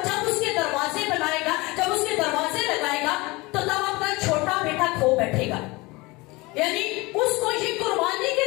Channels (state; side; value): quieter; right; 23.3 dB